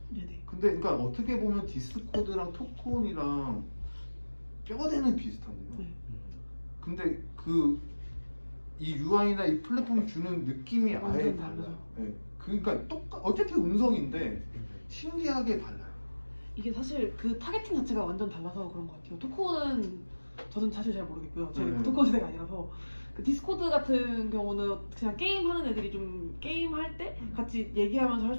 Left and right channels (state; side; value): inverted; both; correlation -1.00